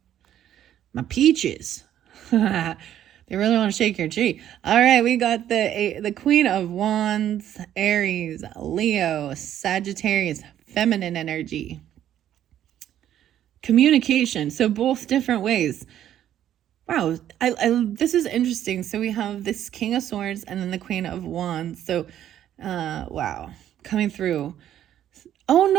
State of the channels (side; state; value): left; quieter; 11.2 dB